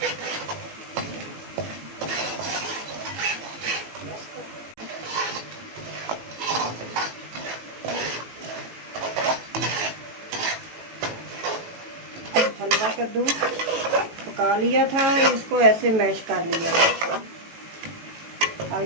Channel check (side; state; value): left; late; 18 ms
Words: हलवा कद्दू पका लिया था, इसको ऐसे मैश कर लिया।